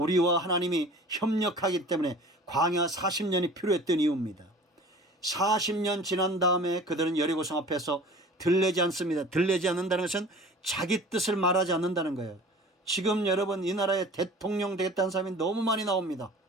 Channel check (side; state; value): both; normal; correlation 0.44